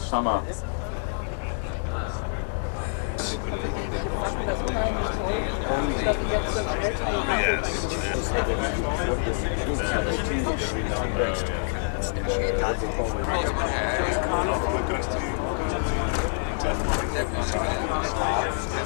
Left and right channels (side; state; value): right; silent; digital silence